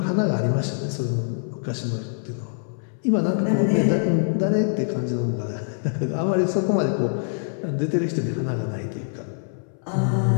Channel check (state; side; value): silent; right; 62 dB below the other